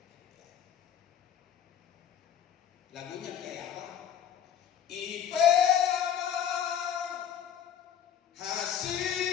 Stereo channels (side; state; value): right; quieter; 9.2 dB